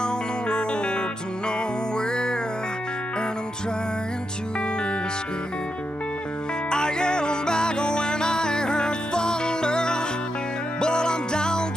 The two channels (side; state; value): both; normal; correlation 0.84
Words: the road to nowhere, and I'm trying to escape. I get back when I heard thunder, but I'm down